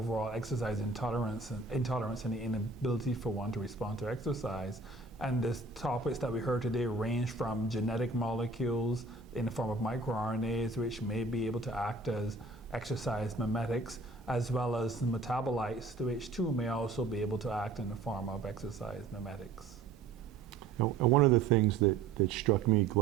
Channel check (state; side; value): quieter; left; 3.9 dB